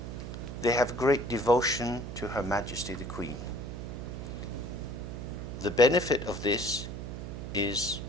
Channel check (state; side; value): noise; right; hum, 7 dB below the sound